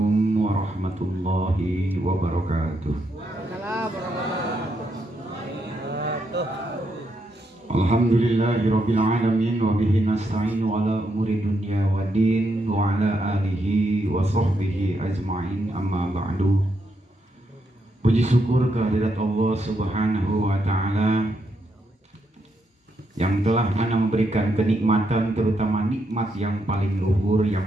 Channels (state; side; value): normal; both; correlation 0.79